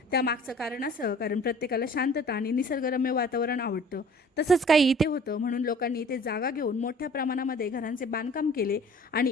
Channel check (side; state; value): both; normal; correlation 0.49